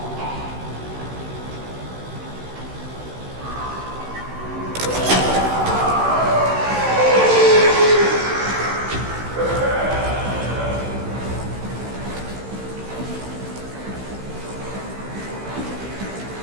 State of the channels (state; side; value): late; left; 16 ms